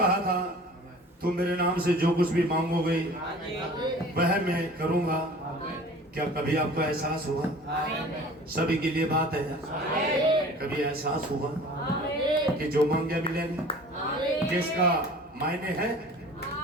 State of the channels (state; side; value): normal; both; correlation 0.44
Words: था तुम मेरे नाम से जो कुछ भी मांगोगे वह मैं करूंगा। क्या कभी आपको एहसास हुआ? सभी के लिए बात है, कभी एहसास हुआ कि जो मांगे मिलेगा, जिसका मायने है?